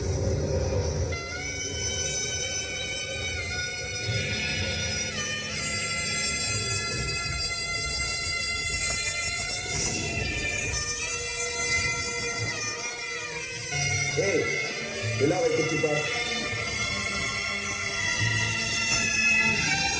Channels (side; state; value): both; identical; correlation 1.00